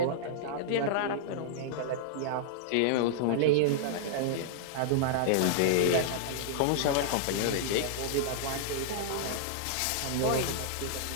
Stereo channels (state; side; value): different; both; correlation -0.01